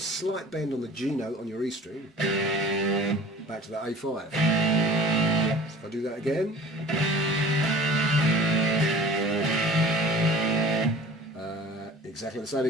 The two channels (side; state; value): both; normal; correlation 0.44